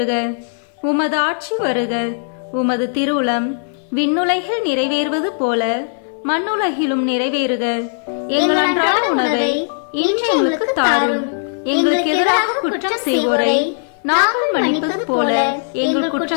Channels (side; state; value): right; silent; 62 dB below the other